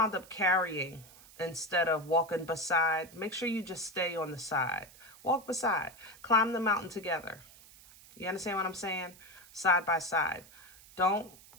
up carrying instead of walking beside. Make sure you just stay on the side. Walk beside. Climb the mountain together. You understand what I'm saying? Side by side. Don't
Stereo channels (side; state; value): right; noise; hiss, 22 dB below the sound